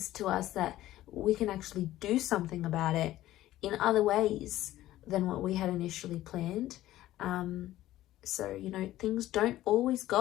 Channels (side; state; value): right; quieter; 14.7 dB